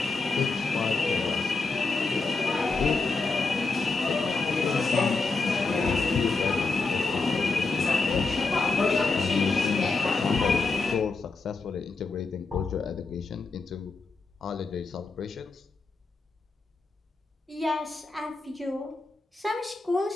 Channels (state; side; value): quieter; right; 4.0 dB